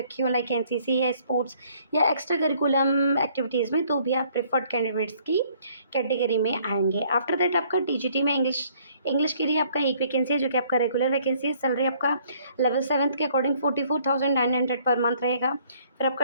हो लाइक एनसीसी या स्पोर्ट्स या एक्स्ट्रा करिकुलम एक्टिविटीज़ में, तो भी आप प्रेफर्ड कैंडिडेट्स की कैटेगरी में आएंगे। आफ्टर दैट आपका टीजीटी में इंग्लिश के लिए आपका एक वैकेंसी है, जो कि आपका रेगुलर वैकेंसी है। सैलरी आपका लेवल 7 के अकॉर्डिंग 44,900 पर मंथ रहेगा। फिर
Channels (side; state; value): both; inverted; correlation -0.62